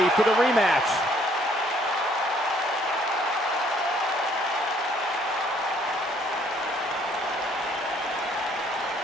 for the rematch.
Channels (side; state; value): both; normal; correlation 0.63